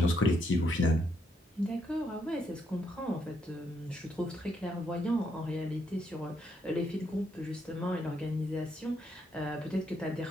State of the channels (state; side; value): normal; both; correlation 0.76